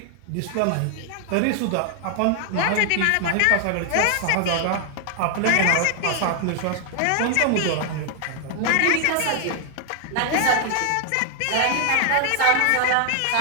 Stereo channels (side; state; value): both; different; correlation 0.00